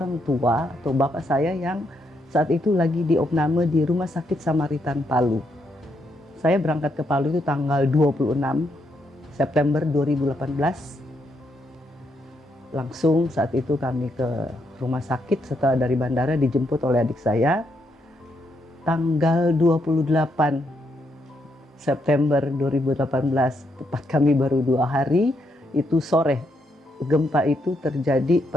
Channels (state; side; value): normal; both; correlation 0.78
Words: tua atau bapak saya yang saat itu lagi diopname di Rumah Sakit Samaritan Palu. Saya berangkat ke Palu itu tanggal 26 September 2018. Langsung saat itu kami ke rumah sakit setelah dari bandara dijemput oleh adik saya. Tanggal 28 September 2018, tepat kami baru 2 hari. Itu sore, gempa itu terjadi